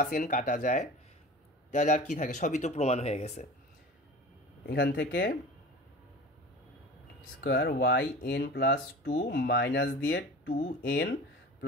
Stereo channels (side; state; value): both; normal; correlation 0.37